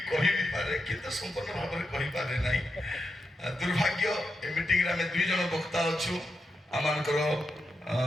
କହିବି ପାରେ କିନ୍ତୁ ସମ୍ପୂର୍ଣ୍ଣ ଭାବରେ କହିପାରେ ନାହିଁ ଦୁର୍ଭାଗ୍ୟ ଏ ମିଟିଂରେ ଆମେ 2 ଜଣ ବକ୍ତା ଅଛୁ ଆମମାନଙ୍କର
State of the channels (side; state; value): both; normal; correlation 0.86